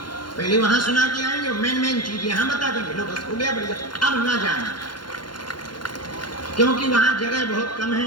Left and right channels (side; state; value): right; late; 0.71 ms